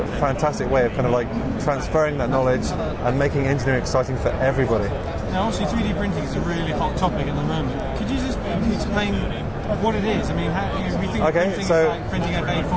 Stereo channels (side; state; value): both; identical; correlation 1.00